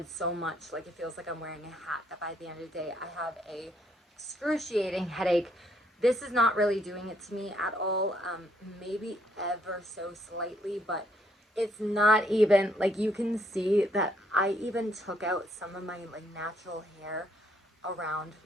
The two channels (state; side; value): normal; both; correlation 0.70